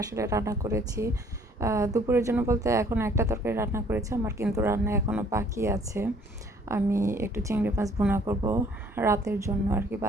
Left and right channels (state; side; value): normal; both; correlation 0.59